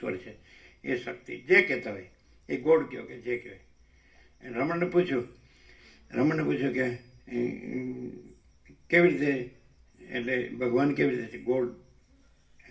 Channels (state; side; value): identical; both; correlation 1.00